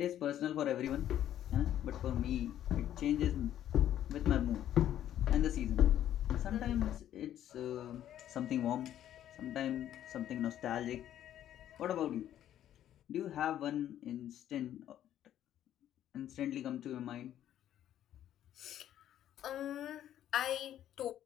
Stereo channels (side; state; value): right; quieter; 11.4 dB